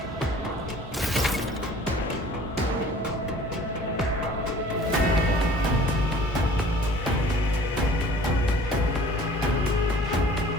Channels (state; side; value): normal; both; correlation 0.49